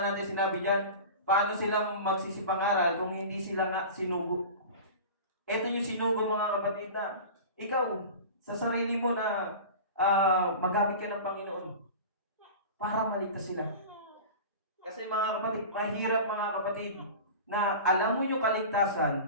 natin, sinabi diyan, paano sila magsisipangaral kung hindi sila nga sinugo? Ito yung sinugo, mga kapatid, na ikaw, sa sarili mo na magamit ka ng Panginoon para maligtas sila. Kasi mga kapatid, mahirap mga kapatid, na alam mo yung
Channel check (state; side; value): inverted; both; correlation -0.33